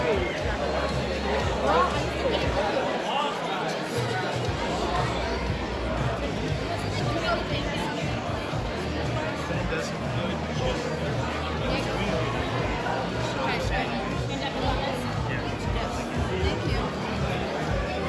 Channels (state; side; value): identical; both; correlation 1.00